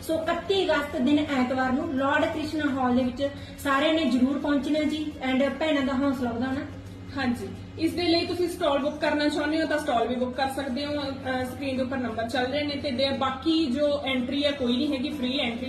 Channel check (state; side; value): identical; both; correlation 1.00